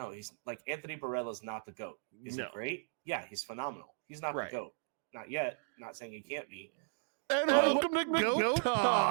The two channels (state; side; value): silent; left; digital silence